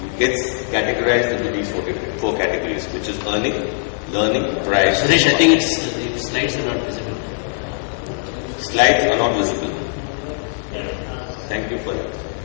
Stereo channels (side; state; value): right; silent; 59 dB below the other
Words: gets categorized into these 4 categories, which is earning, learning, pride. Suresh, I think the slides are not visible. Slides are not visible. Thank you for that.